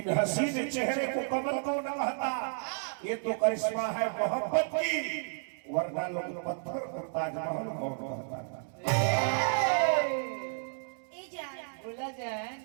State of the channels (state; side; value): silent; left; digital silence